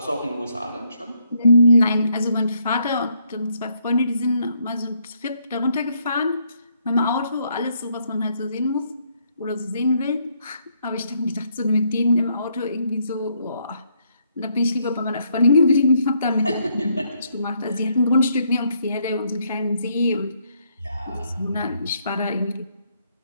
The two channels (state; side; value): inverted; both; correlation -0.73